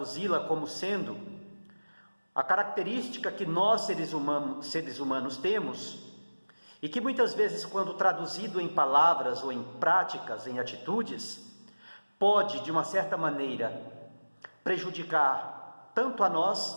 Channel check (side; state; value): both; inverted; correlation -1.00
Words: como sendo a característica que nós seres humanos temos, e que muitas vezes, quando traduzido em palavras ou em práticas, em atitudes, pode, de uma certa maneira, prejudicar tanto a